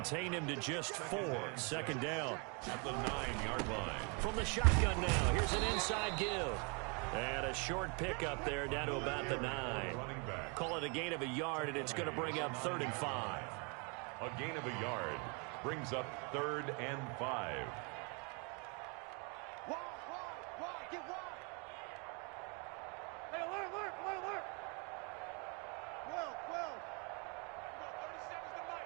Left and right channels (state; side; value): quieter; left; 33.8 dB